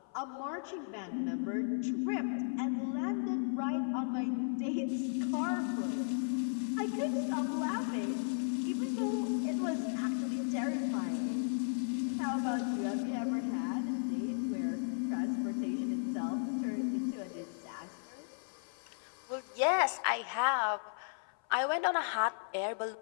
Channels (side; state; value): right; silent; 54 dB below the other